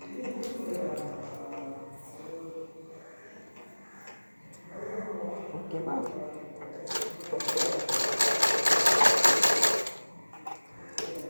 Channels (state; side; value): inverted; both; correlation -1.00